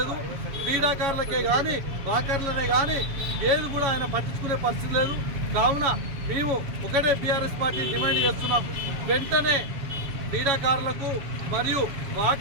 క్రీడాకారులకే కానీ వాకర్లనే కానీ ఏది కూడా ఆయన పట్టించుకునే పరిస్థితి లేదు. కావున మేము ఒకటే బీఆర్ఎస్ పార్టీ డిమాండ్ చేస్తున్నాం, వెంటనే క్రీడాకారులకు మరియు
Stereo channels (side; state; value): left; late; 7.2 ms